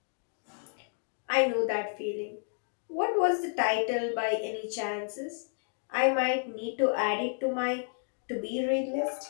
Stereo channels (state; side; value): silent; right; 57 dB below the other